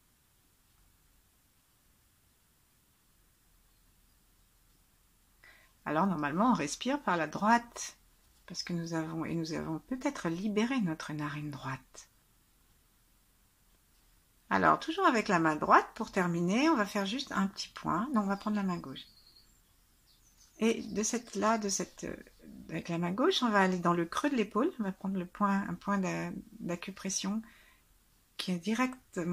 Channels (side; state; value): both; identical; correlation 1.00